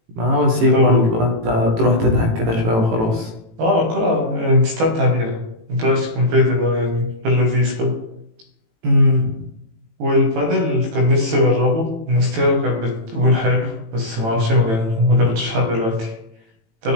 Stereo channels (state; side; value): late; left; 18 ms